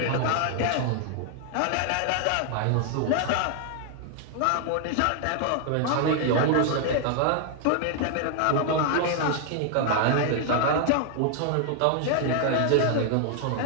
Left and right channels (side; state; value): both; different; correlation 0.00